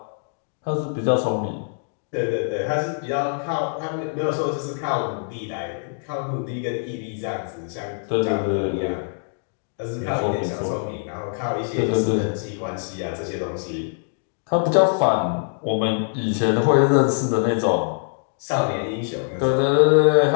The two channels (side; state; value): right; silent; digital silence